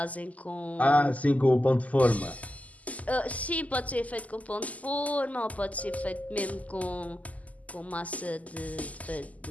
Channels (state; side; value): late; right; 0.074 ms